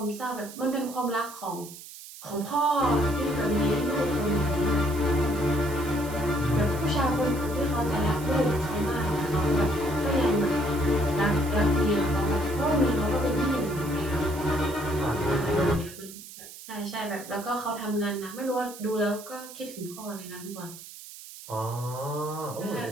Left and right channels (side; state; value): right; noise; hiss, 15 dB below the sound